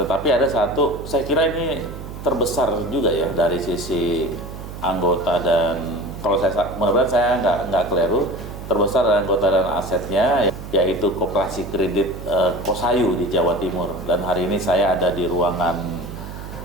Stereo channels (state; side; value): noise; right; hum, 11 dB below the sound